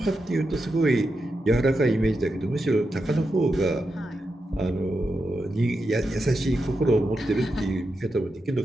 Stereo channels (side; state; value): both; normal; correlation 0.87